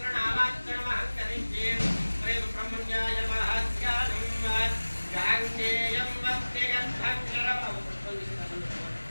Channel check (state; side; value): inverted; both; correlation -1.00